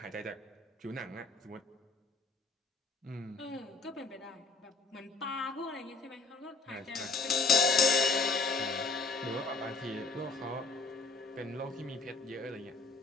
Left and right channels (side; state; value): right; quieter; 4.1 dB